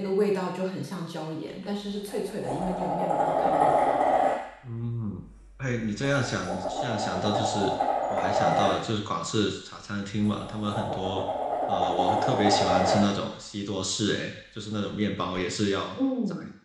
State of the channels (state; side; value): identical; both; correlation 1.00